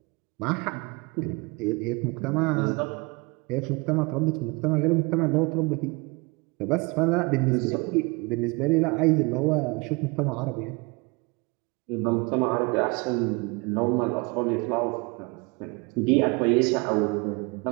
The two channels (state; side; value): quieter; left; 27.8 dB